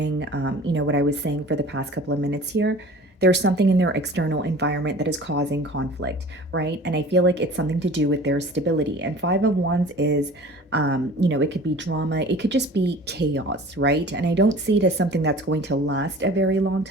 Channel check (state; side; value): normal; both; correlation 0.43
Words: what I was saying for the past couple of minutes here. There's something in their external environment that is causing conflict, right? And I feel like it's something to do with their stability. And Five of Wands is, it could be drama, it could just be chaos, right? And I don't see it as something that's going to last a very long